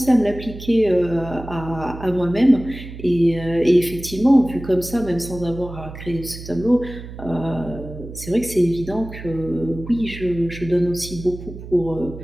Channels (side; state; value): right; noise; hum, 12 dB below the sound